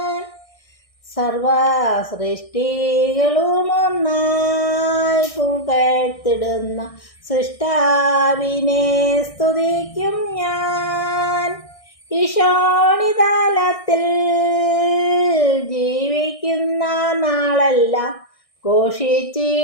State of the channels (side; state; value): right; late; 1.6 ms